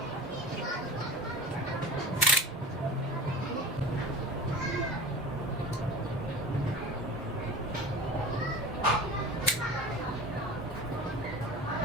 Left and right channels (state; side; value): normal; both; correlation 0.36